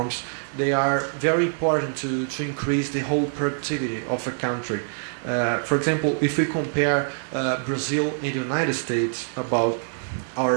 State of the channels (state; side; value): silent; left; 56 dB below the other